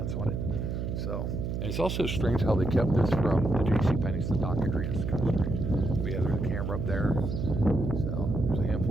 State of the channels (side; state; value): right; noise; hum, 3 dB below the sound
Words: on it. So, and it's also strange how they kept this from the JCPenney's, the dock area. It's kind of strange. But yeah, there's a camera up there. So there's a